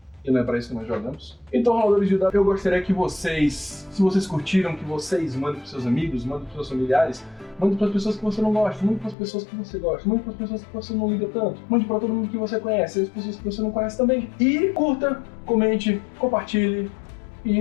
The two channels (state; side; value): drops out; right; at 9.2 s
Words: e não é pra isso que nós jogamos. Então, roladores de dados, eu gostaria que vocês, se vocês curtiram, que vocês mandem pros seus amigos, mandem pros seus familiares, mande para as pessoas que você não gosta, mande para as pessoas que você gosta, mande para as pessoas que você não liga tanto, mande para todo mundo que você conhece, as pessoas que você não conhece também. E curta, comente, compartilhe